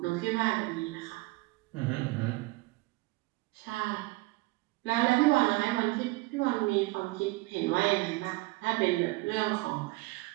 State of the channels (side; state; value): left; quieter; 22.2 dB